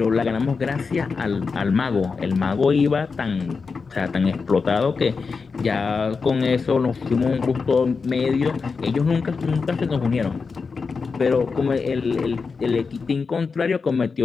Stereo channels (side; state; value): right; quieter; 4.9 dB